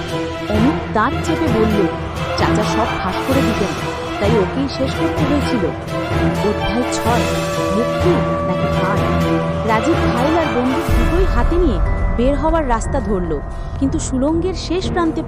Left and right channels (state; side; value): identical; both; correlation 1.00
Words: অমিত দাঁত চেপে বলল, চাচা সব ফাঁস করে দিতেন, তাই ওকেই শেষ করতে হয়েছিল। অধ্যায় 6, মুক্তি নাকি হার। রাজীব ফাইল আর বন্দুক দুটোই হাতে নিয়ে বের হওয়ার রাস্তা ধরল, কিন্তু সুড়ঙ্গের শেষ প্রান্তে